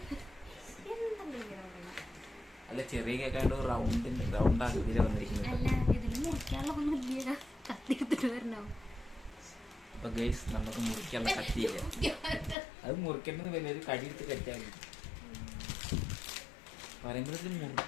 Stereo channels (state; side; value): drops out; right; at 12.6 s